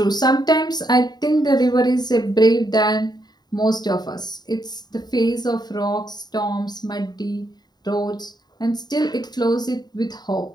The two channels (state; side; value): late; right; 0.20 ms